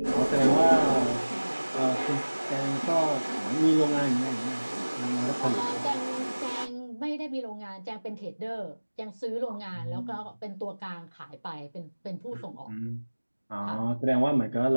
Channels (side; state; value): both; inverted; correlation -1.00